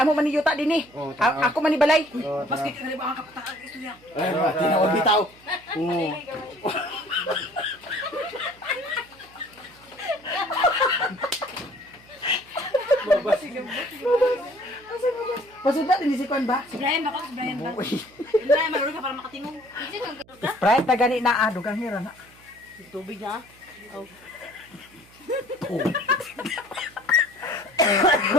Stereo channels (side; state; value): right; noise; hum, 27 dB below the sound